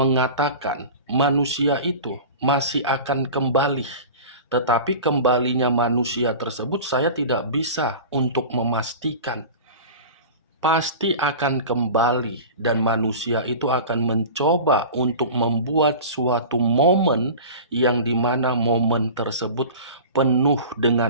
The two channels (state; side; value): inverted; both; correlation -0.35